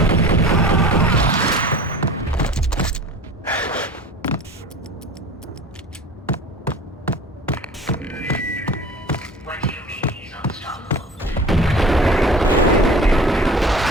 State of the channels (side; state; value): both; normal; correlation 0.40